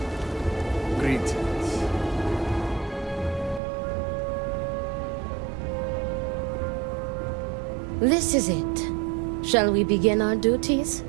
This is it. Shall we begin our duties?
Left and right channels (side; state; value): left; drops out; at 3.6 s